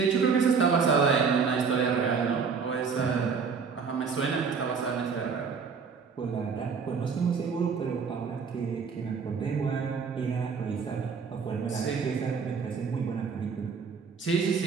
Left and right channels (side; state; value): left; quieter; 5.7 dB